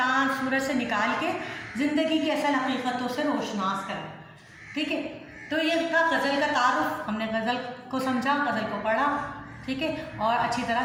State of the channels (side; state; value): both; identical; correlation 1.00